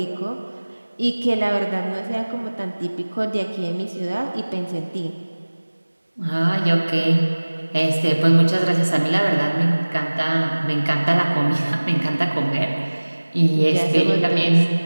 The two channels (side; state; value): both; inverted; correlation -1.00